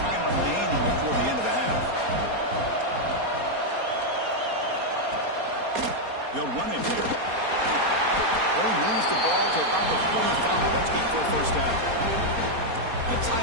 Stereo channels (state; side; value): late; left; 4.2 ms